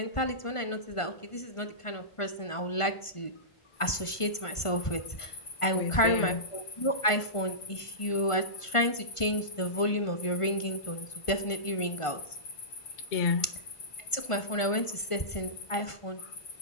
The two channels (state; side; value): late; right; 1.5 ms